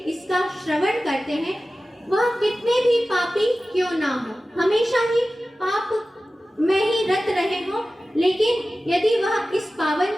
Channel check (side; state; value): both; normal; correlation 0.95